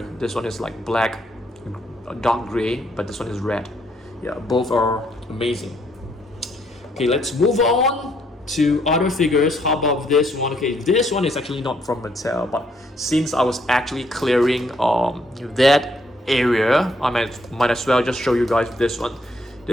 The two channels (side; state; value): both; normal; correlation 0.70